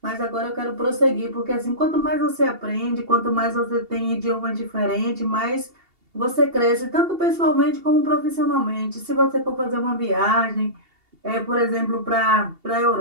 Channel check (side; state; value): left; late; 2.8 ms